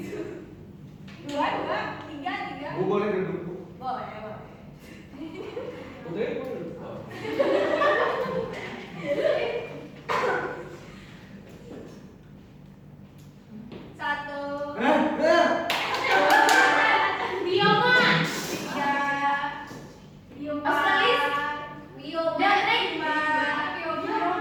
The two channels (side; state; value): both; identical; correlation 1.00